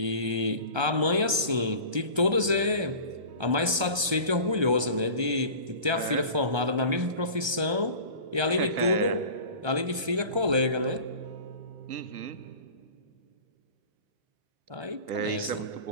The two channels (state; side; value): late; left; 1.3 ms